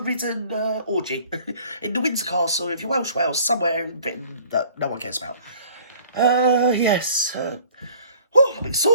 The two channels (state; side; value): inverted; both; correlation -0.52